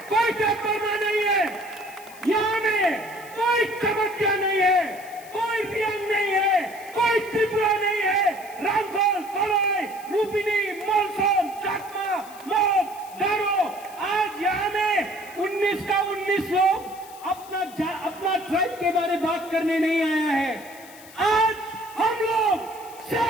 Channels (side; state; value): left; noise; hiss, 20 dB below the sound